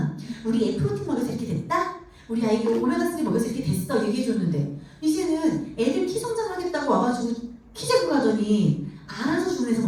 우리 애 프로틴 먹여서 이렇게 됐다? 우리 아이가 오메가3 먹여서 이렇게 됐어 얘기해줬는데 이제는 애들 키 성장하겠다고 와가지고 키 재고 가더니 알아서 주는 데서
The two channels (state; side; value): identical; both; correlation 1.00